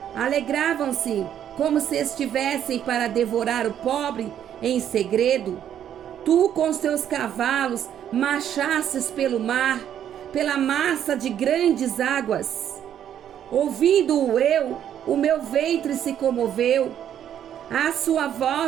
Alegravam-se como se estivessem para devorar o pobre em segredo. Tu com os teus cavalos marchastes pelo mar, pela massa de grandes águas. Ouvindo-o eu, o meu ventre se comoveu. À sua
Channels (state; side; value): quieter; left; 10.0 dB